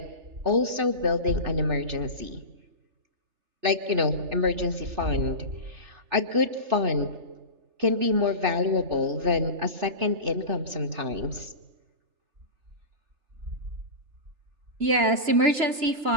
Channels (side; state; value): left; late; 3.3 ms